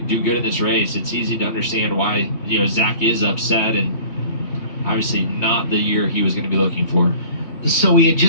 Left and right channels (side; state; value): right; late; 3.2 ms